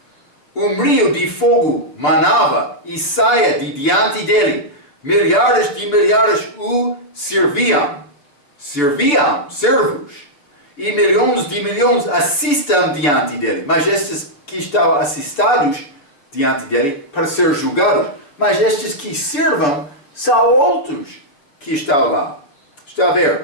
Um rio de fogo manava e saia de diante dele. Milhares de milhares o serviam, servos. E milhões de milhões assistam diante dele. Mas estes que estão assistados diante dele para ser julgados. Mas estes que servam são outros que estão lá. Está a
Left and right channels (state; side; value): late; right; 7.0 ms